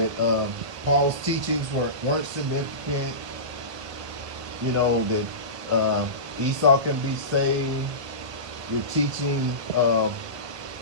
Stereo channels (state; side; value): late; left; 1.1 ms